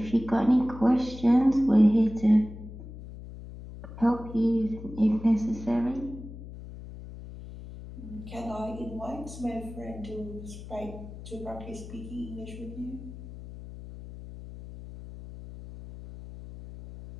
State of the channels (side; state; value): left; noise; hum, 13 dB below the sound